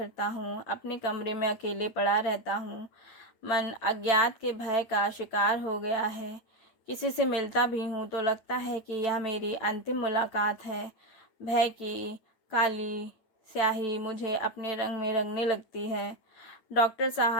हूँ, अपने कमरे में अकेले पड़ा रहता हूँ। मन अज्ञात के भय का शिकार हो गया है। किसी से मिलता भी हूँ तो लगता है कि यह मेरी अंतिम मुलाकात है। भय की काली स्याही मुझे अपने रंग में रंगने लगती है। डॉक्टर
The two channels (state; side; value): late; right; 8.8 ms